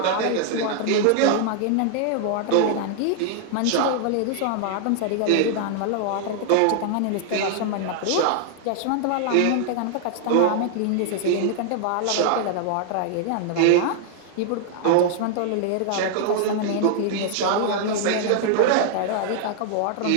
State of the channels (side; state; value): both; different; correlation 0.00